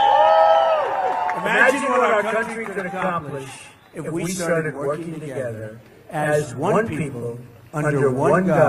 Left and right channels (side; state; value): both; identical; correlation 1.00